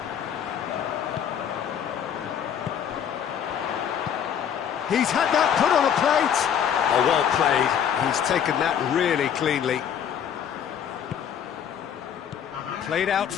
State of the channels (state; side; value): quieter; right; 8.7 dB